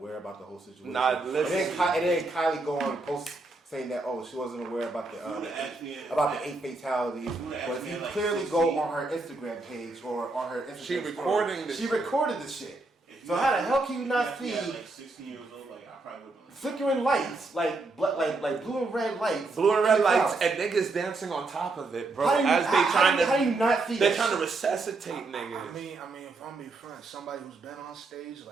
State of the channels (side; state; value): left; quieter; 3.4 dB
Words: about the whole situation. Nah, listen. And then Kylie go on and post saying that she wasn't aware about the 8 fatalities. But if you clearly go on her Instagram page or on her Instagram she recorded the shit. So how the hell can you not see? Like 16 years old, like I probably would. Flickering lights, like blue and red lights. Blue and red lights and niggas dancing on top of it, bro. How do you not see They're trying to resuscitate niggas. I mean, if I'm being frank, somebody who's been on stage